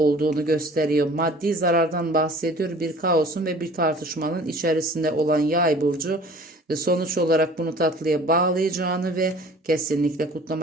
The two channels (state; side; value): normal; both; correlation 0.48